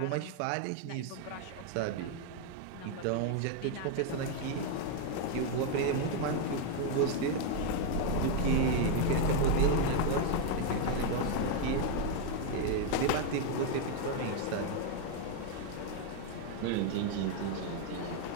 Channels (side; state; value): both; different; correlation 0.01